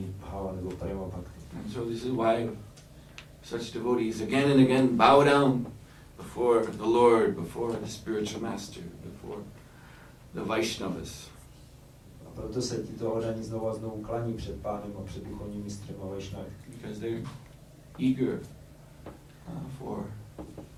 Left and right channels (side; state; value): both; identical; correlation 1.00